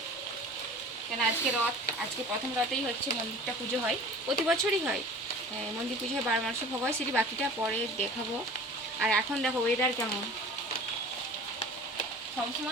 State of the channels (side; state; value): both; normal; correlation 0.42